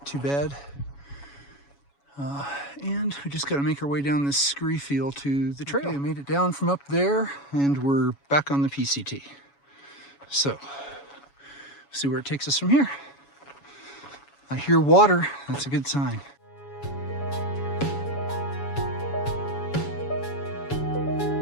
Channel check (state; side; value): late; right; 7.1 ms